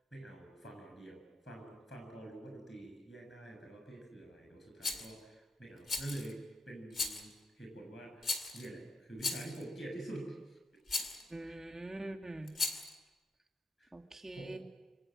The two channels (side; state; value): both; normal; correlation 0.83